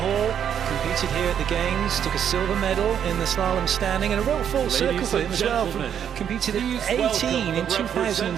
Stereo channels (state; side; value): quieter; left; 8.8 dB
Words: Competed here at the Games, took a silver medal in the slalom standing, and a real full circle for him as well. Competed at 18 in